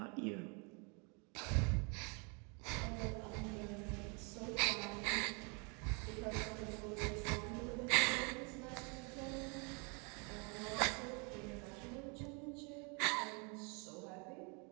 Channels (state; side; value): quieter; left; 33.5 dB